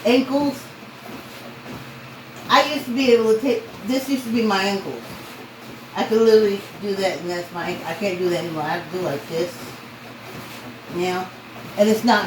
Ankles. I used to be able to take, this used to be my ankles. I could literally do that and that's my ankle. I can't do that anymore. I have to do like this. Now. And it's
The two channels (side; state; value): both; identical; correlation 1.00